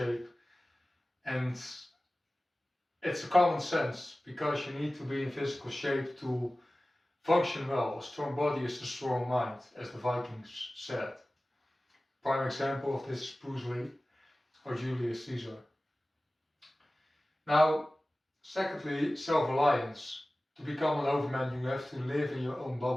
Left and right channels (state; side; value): normal; both; correlation 0.97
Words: and it's a common sense, because you need to be in physical shape to function well. A strong body is a strong mind, as the Vikings said. Prime example of this is Bruce Lee or Julius Caesar. Now, secondly, self-reliance. To become an overman, you have to live in your own